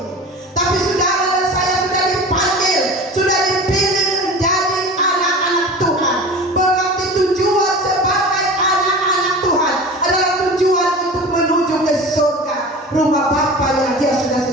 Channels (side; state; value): both; normal; correlation 0.35